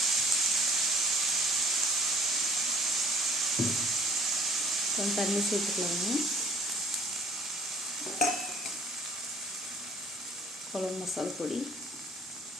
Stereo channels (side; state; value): both; normal; correlation 0.55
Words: கொஞ்சம் தண்ணி சேர்த்துக்கலாங்க. குழம்பு மசாலா பொடி,